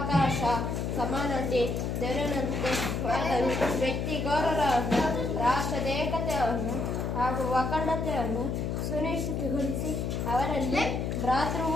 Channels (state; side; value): noise; left; hum, 1 dB below the sound